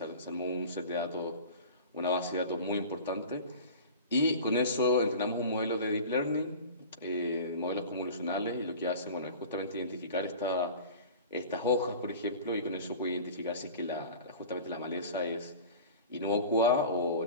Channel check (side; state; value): both; inverted; correlation -0.37